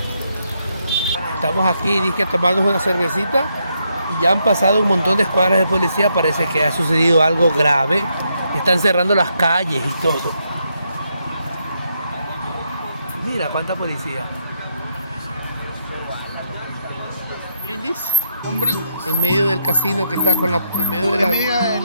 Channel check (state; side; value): inverted; both; correlation -0.78